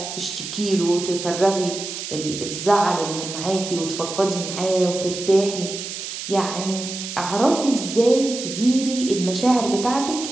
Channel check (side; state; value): right; noise; hiss, 7 dB below the sound